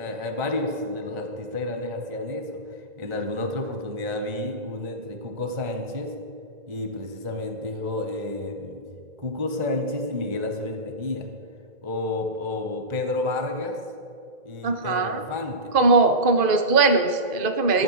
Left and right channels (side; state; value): left; late; 1.9 ms